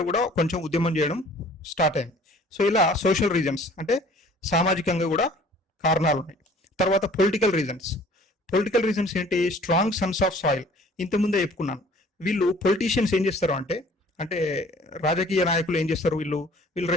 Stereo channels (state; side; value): normal; both; correlation 0.52